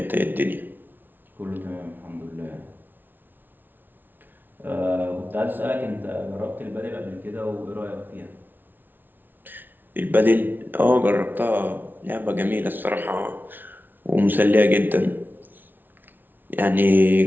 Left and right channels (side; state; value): left; late; 0.091 ms